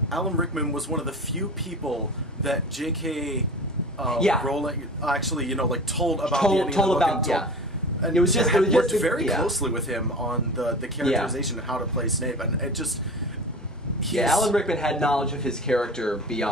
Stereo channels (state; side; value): normal; both; correlation 0.35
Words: Rickman was one of the few people that J.K. Rowling actually, told about the ending of the book. And it was just worked very closely with him on the characterization and how to play Snape, and it just. Alan Rickman had knowledge of his character